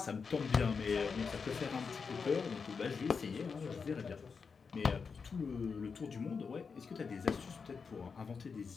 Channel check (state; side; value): quieter; right; 5.4 dB